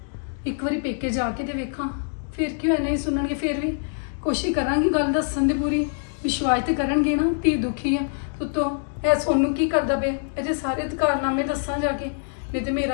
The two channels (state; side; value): silent; right; digital silence